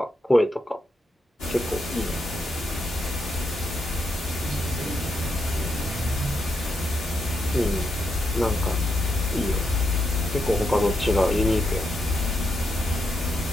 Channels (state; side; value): normal; both; correlation 0.82